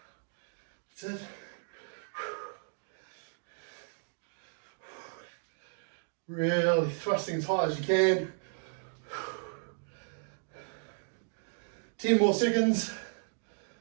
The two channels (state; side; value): silent; left; digital silence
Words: That's it. Really thrusting as high as you can. 10 more seconds.